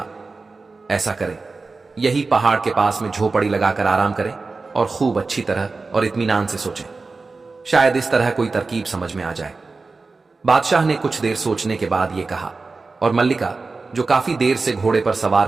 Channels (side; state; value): left; quieter; 3.9 dB